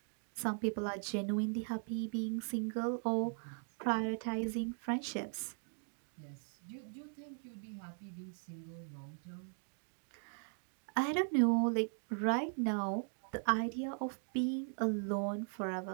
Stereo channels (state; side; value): silent; left; 52 dB below the other